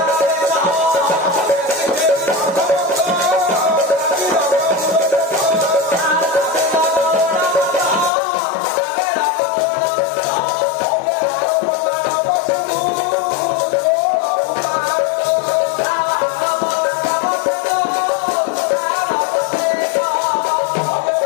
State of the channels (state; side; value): drops out; right; at 8.1 s